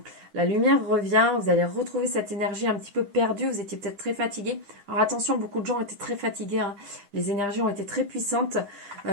La lumière revient, vous allez retrouver cette énergie un petit peu perdue. Vous étiez peut-être très fatigué. Alors attention, beaucoup de gens étaient très fatigués. Hein. Les énergies ont été très puissantes.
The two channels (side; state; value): left; late; 9.9 ms